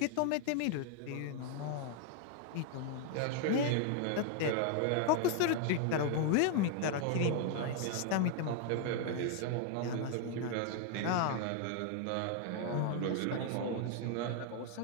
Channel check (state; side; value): different; both; correlation 0.00